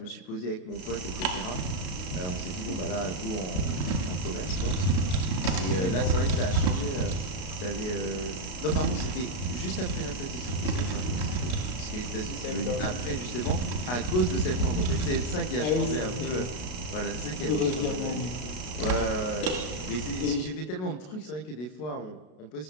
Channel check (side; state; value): right; late; 33 ms